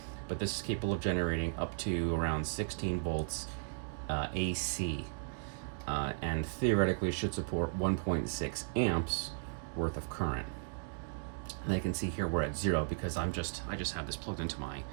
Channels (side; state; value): left; silent; digital silence